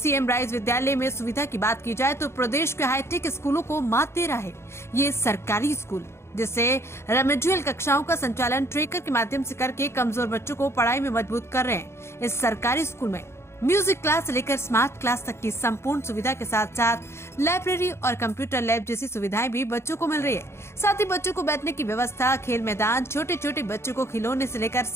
राइज विद्यालय में सुविधा की बात की जाए तो प्रदेश के हाईटेक स्कूलों को मात दे रहा है ये सरकारी स्कूल, जिससे रेमेडियल कक्षाओं का संचालन ट्रेकर के माध्यम से करके कमजोर बच्चों को पढ़ाई में मजबूत कर रहे हैं। इस सरकारी स्कूल में म्यूजिक क्लास से लेकर स्मार्ट क्लास तक की संपूर्ण सुविधा के साथ साथ लाइब्रेरी और कंप्यूटर लैब जैसी सुविधाएं भी बच्चों को मिल रही है। साथ ही बच्चों को बैठने की व्यवस्था, खेल मैदान, छोटे छोटे बच्चों को खिलौने से लेकर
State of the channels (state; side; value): late; right; 0.13 ms